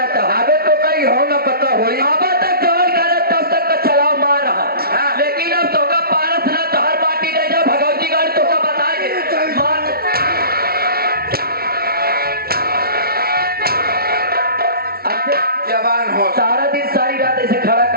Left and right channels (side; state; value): left; late; 0.44 ms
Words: था अबे तो कहीं हो ना पता होई। अब तक जवान करे तब तक का चलाव मार रहा हाँ। लेकिन अब तो का पारस ना तो हर माटी नहीं जा भगवती गाड़ी तो का बताए मार जवान हो सारा दिन सारी रात ऐसे